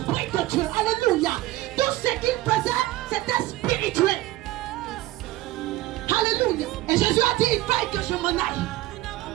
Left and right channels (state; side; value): quieter; left; 16.9 dB